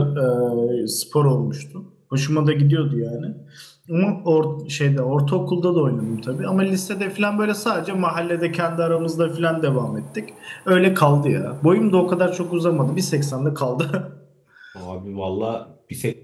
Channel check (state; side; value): identical; both; correlation 1.00